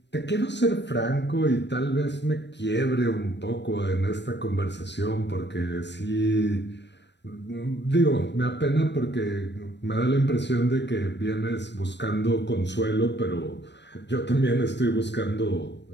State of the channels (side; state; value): right; late; 0.51 ms